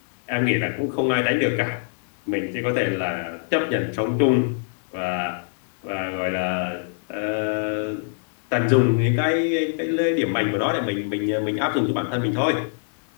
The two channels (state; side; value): silent; right; digital silence